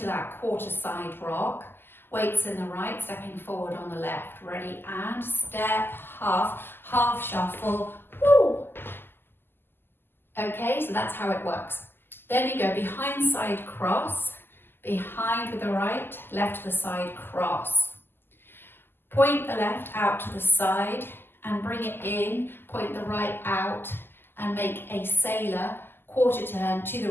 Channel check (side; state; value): right; late; 0.10 ms